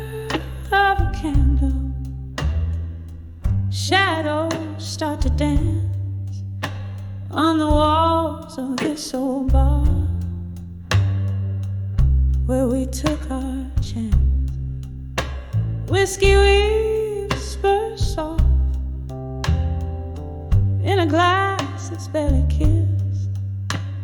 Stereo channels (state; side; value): identical; both; correlation 1.00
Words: of a candle, shadows start to dance on the walls of this old bar where we took our chance. Whiskey whispers soft in a glass that's barely kissed.